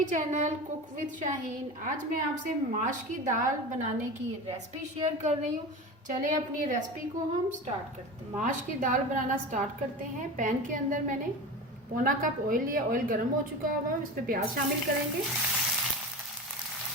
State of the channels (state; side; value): normal; both; correlation 0.29